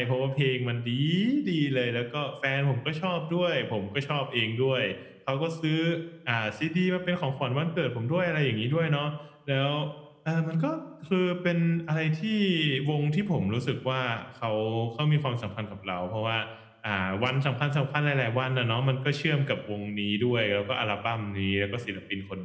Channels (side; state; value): both; identical; correlation 1.00